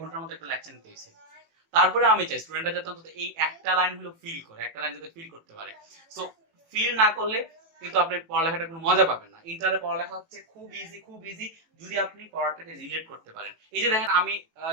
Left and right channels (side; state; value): left; late; 18 ms